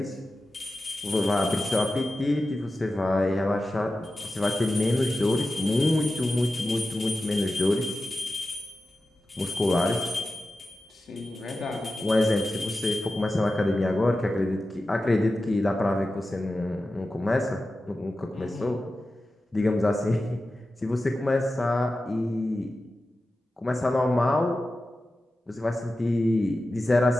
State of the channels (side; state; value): both; normal; correlation 0.93